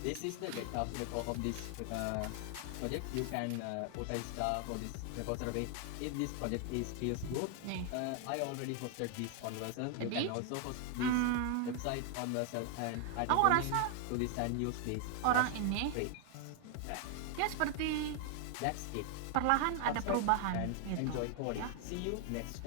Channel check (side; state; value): both; different; correlation 0.00